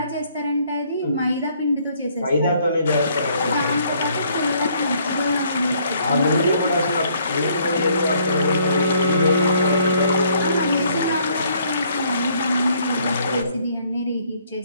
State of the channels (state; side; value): inverted; both; correlation -0.65